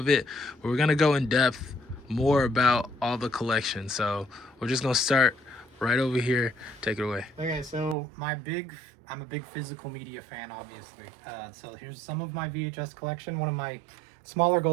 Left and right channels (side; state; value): left; drops out; at 8.0 s